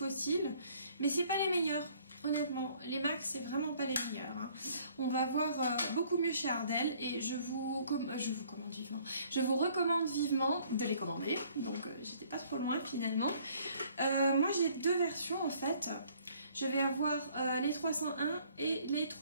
mais c'est pas les meilleurs, honnêtement. Les MAC c'est vraiment pas les meilleurs, hein. On va voir beaucoup mieux chez Ardell et je vous recommande vivement de les commander. Donc j'étais pas trop loin finalement. Moi j'ai deux versions en fait. Je vais avoir les 301 et les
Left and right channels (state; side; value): inverted; both; correlation -0.60